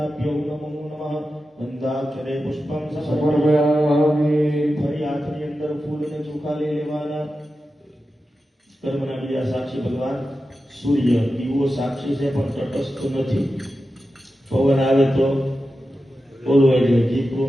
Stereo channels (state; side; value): normal; both; correlation 0.91